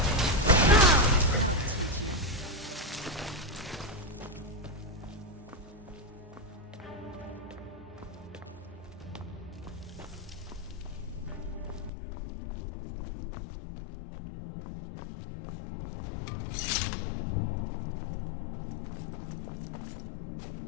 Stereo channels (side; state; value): right; drops out; at 11.9 s